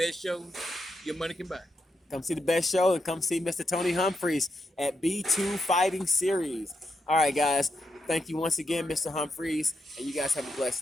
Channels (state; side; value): normal; both; correlation 0.84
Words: show your money can buy. Come see the best show and come see Mr. Tony Humphries at B2 Fighting Series. All right, guys. Thank you once again, Mr. Humphries, and you guys have a